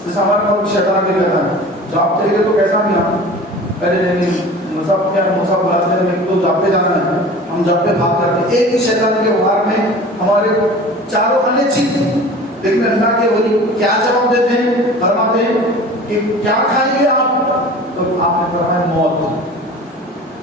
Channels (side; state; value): both; normal; correlation 0.40